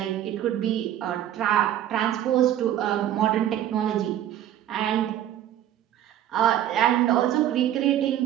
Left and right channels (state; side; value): quieter; left; 11.5 dB